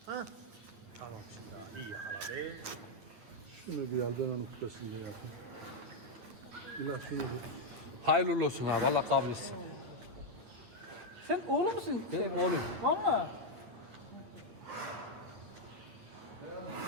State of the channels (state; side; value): late; left; 9.1 ms